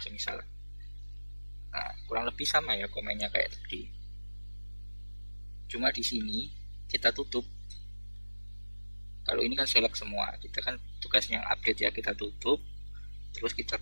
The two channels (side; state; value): both; inverted; correlation -1.00